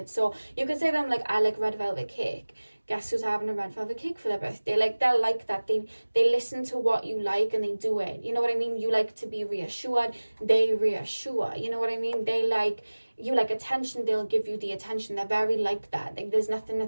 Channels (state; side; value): inverted; both; correlation -1.00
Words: So you could say to them, like, I like red velvet cake. Guess who's having a red velvet cake for their birthday? Like, they're like that. They listen to what you like and they do it. You know what I mean? You like to be reassured, they reassure. You know what I mean? They like, you like attention, they'll give you the attention. They're very like that. Like, there's nothing